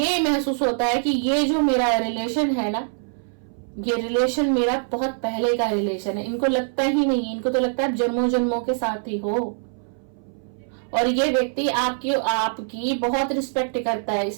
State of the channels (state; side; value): silent; left; 60 dB below the other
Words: महसूस होता है कि ये जो मेरा रिलेशन है ना, ये रिलेशन मेरा बहुत पहले का रिलेशन है। इनको लगता ही नहीं, इनको तो लगता है जन्मों जन्मों के साथ ही हो। और ये व्यक्ति आपकी बहुत रिस्पेक्ट करता है,